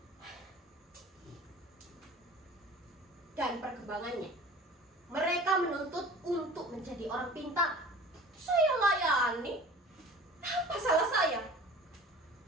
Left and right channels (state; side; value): normal; both; correlation 0.42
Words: Dan perkembangannya, mereka menuntut untuk menjadi orang pintar. Saya layani. Apa salah saya?